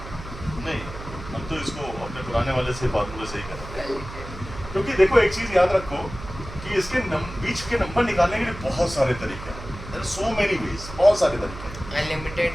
नहीं, हम तो इसको अपने पुराने वाले से फार्मूले से ही करेंगे. Well, क्योंकि देखो एक चीज याद रखो कि इसके बीच के नंबर निकालने के लिए बहुत सारे तरीके हैं. There are so many ways, बहुत सारे तरीके हैं. unlimited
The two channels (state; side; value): noise; right; hum, 12 dB below the sound